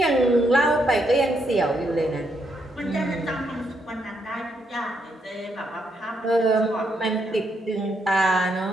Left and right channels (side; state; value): both; normal; correlation 0.77